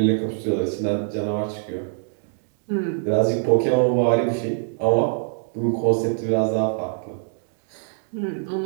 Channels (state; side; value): silent; left; digital silence